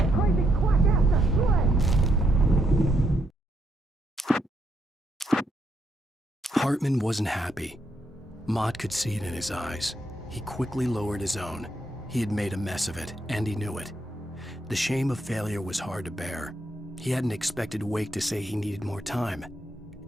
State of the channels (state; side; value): normal; both; correlation 0.76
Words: Hartman wasn't happy. Mott could see it in his eyes. He quickly lowered his own. He had made a mess of it, and he knew it. The shame of failure was hard to bear. He hadn't expected Wake to say he needed more time,